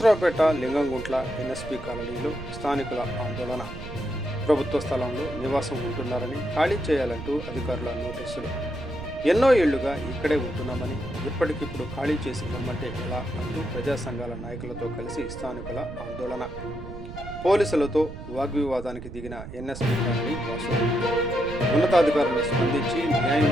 లింగంగుంట్ల ఎన్ఎస్పి కాలనీలో స్థానికుల ఆందోళన. ప్రభుత్వ స్థలంలో నివాసం ఉంటున్నారని ఖాళీ చేయాలంటూ అధికారుల నోటీసులు. ఎన్నో ఏళ్లుగా ఇక్కడే ఉంటున్నామని ఇప్పటికిప్పుడు ఖాళీ చేసి పొమ్మంటే ఎలా అంటూ ప్రజా సంఘాల నాయకులతో కలిసి స్థానికుల ఆందోళన. పోలీసులతో వాగ్వివాదానికి దిగిన ఎన్ఎస్పి కాలనీ వాసులు. ఉన్నతాధికారులు స్పందించి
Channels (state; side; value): noise; right; rumble, 11 dB below the sound